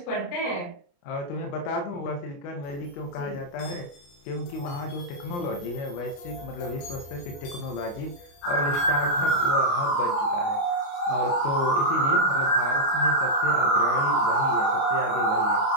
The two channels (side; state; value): right; late; 29 ms